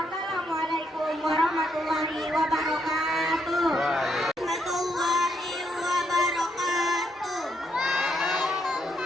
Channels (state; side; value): normal; both; correlation 0.77